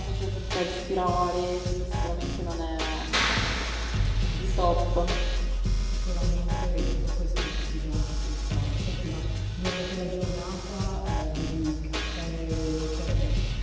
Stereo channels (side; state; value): both; identical; correlation 1.00